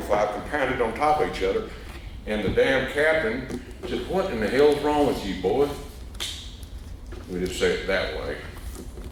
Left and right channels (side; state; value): both; identical; correlation 1.00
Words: compounded on top of each other. And the damn captain said, what in the hell's wrong with you, boy? We didn't say it that way.